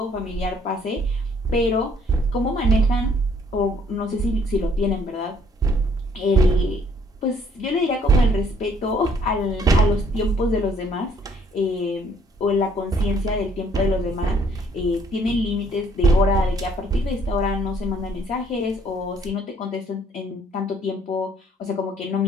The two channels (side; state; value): both; normal; correlation 0.63